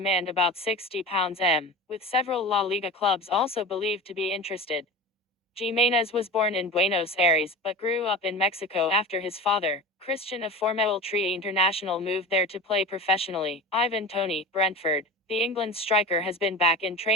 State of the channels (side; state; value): both; normal; correlation 0.31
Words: about £60 with several La Liga clubs also believed to be interested. Jimenez was born in Buenos Aires, but grew up in Mexico after his father, Christian, a former Tri international, moved there to play professionally. Ivan Toney, Brentford. The England striker has been back in